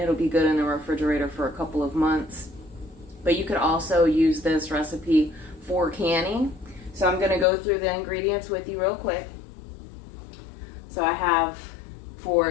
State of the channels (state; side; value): drops out; right; at 7.5 s